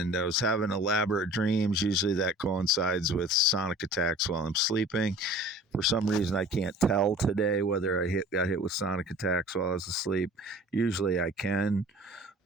I was having elaborate dreams. Usually that coincides with sonic attacks while I'm sleeping. For some reason, I can't tell today whether got hit with sonic attacks while I was asleep. Usually I can.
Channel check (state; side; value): normal; both; correlation 0.45